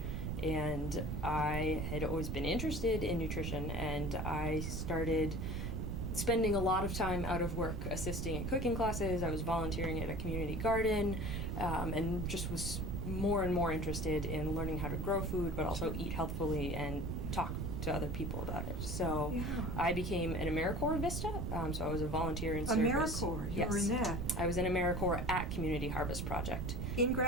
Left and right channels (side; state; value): right; noise; rumble, 2 dB below the sound